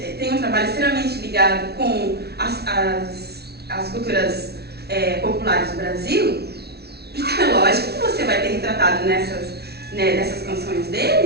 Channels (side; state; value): left; late; 0.47 ms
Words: tem um trabalho extremamente ligado com as culturas populares do Brasil. Então é lógico que você vai ter retratado nessas canções